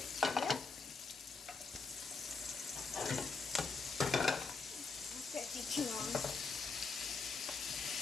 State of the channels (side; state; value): right; quieter; 4.6 dB